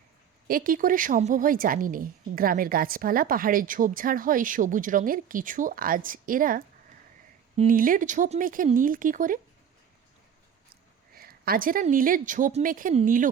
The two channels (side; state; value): left; quieter; 8.3 dB